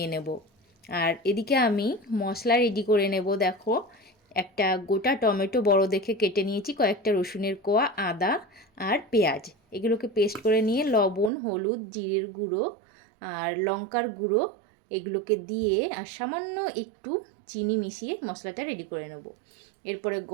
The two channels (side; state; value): left; drops out; at 11.3 s